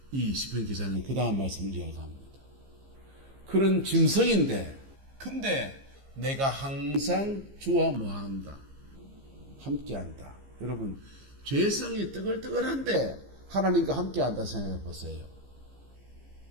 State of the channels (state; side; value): late; left; 15 ms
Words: 이 시편 기자는 그 다음 말씀을 이야기합니다. 그런 짐승인데 근데 내가 항상 주와 뭐한다? 함께한다. 여러분 죄성이 뜨글뜨글한데 하나님과 함께한다 생각해 보세요.